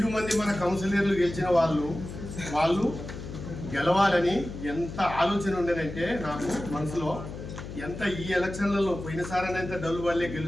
మంది మన కౌన్సిలర్లు గెలిచిన వాళ్ళు గెలవాలని ఎంత ఆలోచన ఉండేదంటే నాకు మనసులో ఎంత ఈ ఎలక్షన్లలో పోయినసారి ఎంత డల్లు వల్లే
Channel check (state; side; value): noise; left; hum, 10 dB below the sound